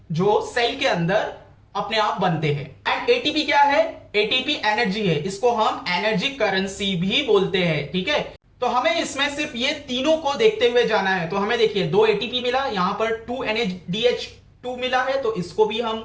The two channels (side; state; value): both; identical; correlation 1.00